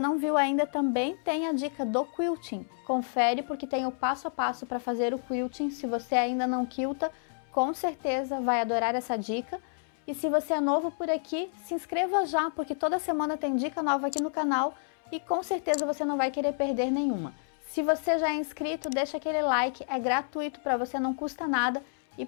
viu ainda, também tem a dica do quilting. Confere porque tem o passo a passo para fazer o quilting. Se você ainda não quilta, com certeza vai adorar essa dica. E se você é novo por aqui, se inscreva já, porque toda semana tem dica nova aqui no canal e com certeza você não vai querer perder nenhuma. Se você já é inscrito, deixa aquele like, é gratuito para você, não custa nada e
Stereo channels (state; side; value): silent; right; 58 dB below the other